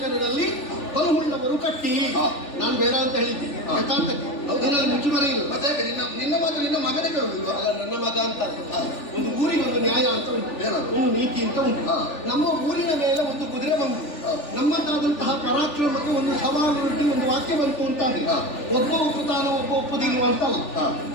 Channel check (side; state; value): right; late; 3.4 ms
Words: ಬಲಹುಳ್ಳವರು ಕಟ್ಟಿ, ನಾನು ಬೇಡ ಅಂತ ಹೇಳಿದ್ದೀನಿ. ಯಥಾರ್ಥಕ್ಕೆ ಇದರಲ್ಲಿ ಮುಚ್ಚುಮರೆ ಇಲ್ಲ. ಮತ್ತೆ ನಿನ್ನ ಮಾತು ನಿನ್ನ ಮಗನೇ ಕೇಳುವುದಿಲ್ಲ? ಅಲ್ಲ, ನನ್ನ ಮಗ ಅಂತ ಒಂದು ಊರಿಗೆ ಒಂದು ನ್ಯಾಯ ಅಂತ ಉಂಟು, ಒಂದು ನೀತಿ ಅಂತ ಉಂಟು. ನಮ್ಮ ಊರಿನ ಮೇಲೆ ಒಂದು ಕುದುರೆ ಬಂತು, ನಮ್ಮದಾದಂತಹ ಪರಾಕ್ರಮಕ್ಕೆ ಒಂದು ಸವಾಲುಂಟು, ಒಂದು ವಾಕ್ಯ ಬಂತು ಅಂತ ಒಬ್ಬ ಒಪ್ಪುತ್ತಾನ, ಒಬ್ಬ ಒಪ್ಪುದಿಲ್ವ ಅಂತಲ್ಲ.